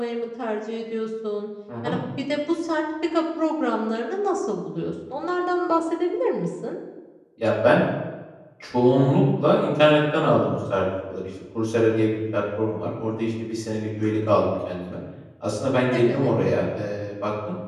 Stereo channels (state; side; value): identical; both; correlation 1.00